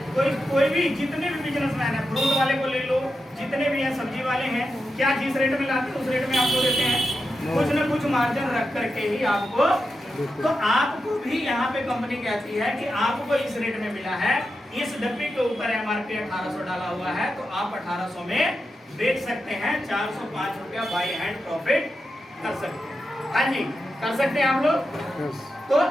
कोई भी जितने भी बिजनेसमैन है, फ्रूट वाले को ले लो, जितने भी हैं सब्जी वाले हैं, क्या जिस रेट में लाते हैं उस रेट में आपको देते हैं? कुछ न कुछ मार्जिन रख करके ही आपको। तो आपको भी यहाँ पे कंपनी कहती है कि आपको इस रेट में मिला है, इस डब्बे के ऊपर एमआरपी 1800 डाला हुआ है, तो आप 1800 में बेच सकते हैं। 405 रुपया बाय हैंड प्रॉफिट कर सकते हैं। हाँ जी, कर सकते हैं आप लोग। तो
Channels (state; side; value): normal; both; correlation 0.88